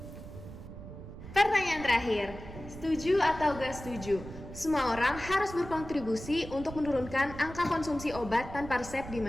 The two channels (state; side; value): noise; right; rumble, 13 dB below the sound